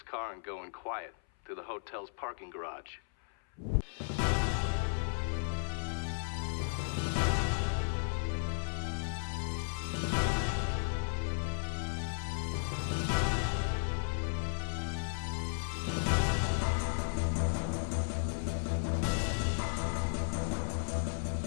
car and go in quiet through the hotel's parking garage.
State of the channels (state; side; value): silent; right; 55 dB below the other